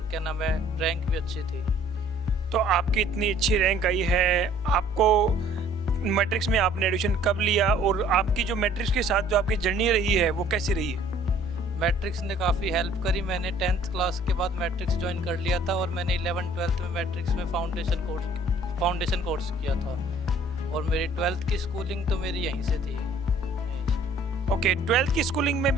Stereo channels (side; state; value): both; normal; correlation 0.56